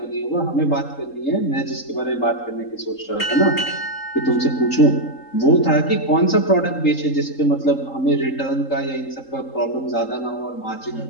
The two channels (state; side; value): late; right; 3.8 ms